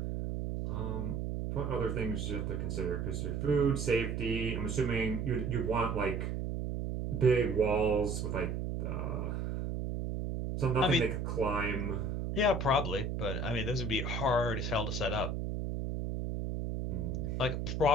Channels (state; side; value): noise; right; hum, 2 dB below the sound